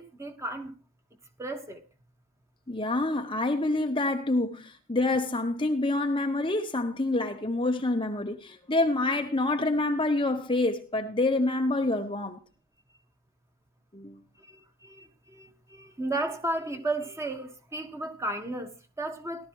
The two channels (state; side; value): normal; both; correlation 0.56